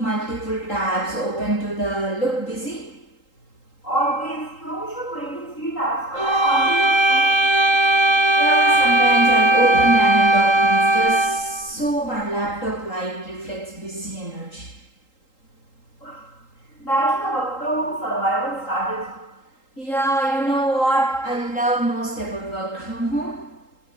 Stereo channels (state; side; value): late; right; 3.8 ms